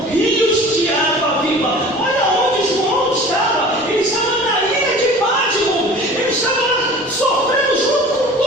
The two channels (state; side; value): normal; both; correlation 0.42